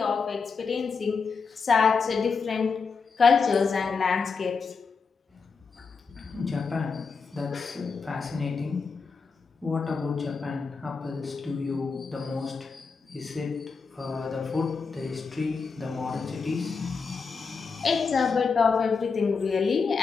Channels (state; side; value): quieter; right; 5.1 dB